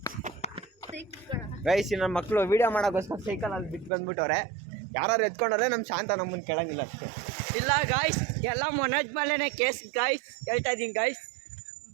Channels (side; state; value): left; drops out; at 3.9 s